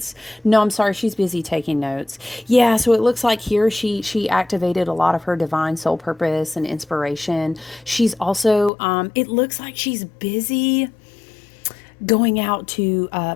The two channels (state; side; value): drops out; right; at 8.7 s